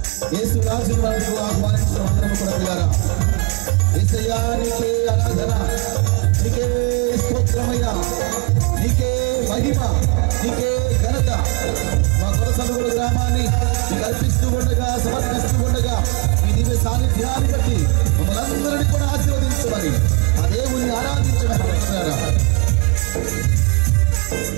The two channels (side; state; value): left; quieter; 30.7 dB